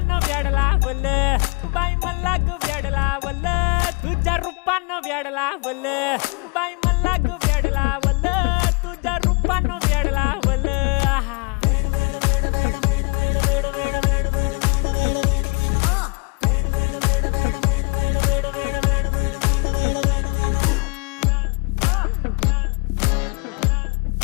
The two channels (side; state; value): right; quieter; 31.1 dB